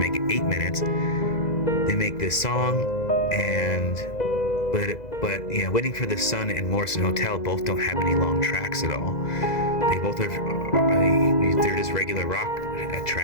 it 8 minutes. They make this song, but Waiting for the Sun and Morrison Hotel both don't have any long tracks at all. They both they're just regular rock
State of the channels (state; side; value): late; right; 2.0 ms